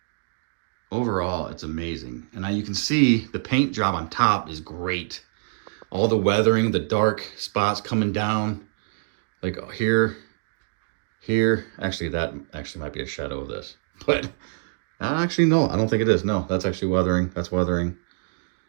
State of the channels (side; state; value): left; silent; digital silence